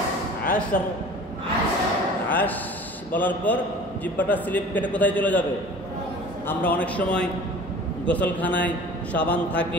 আশর। আশ বলার পর জিহ্বাটা স্লিপ কেটে কোথায় চলে যাবে? আমরা অনেক সময় গোসলখানায় সাবান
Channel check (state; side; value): normal; both; correlation 0.43